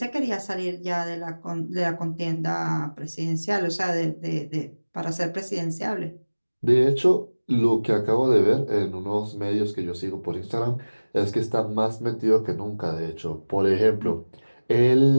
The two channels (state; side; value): inverted; both; correlation -1.00